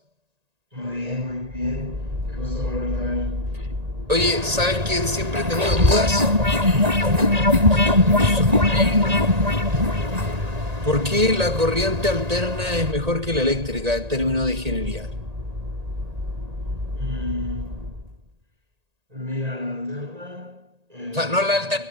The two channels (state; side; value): late; left; 1.8 ms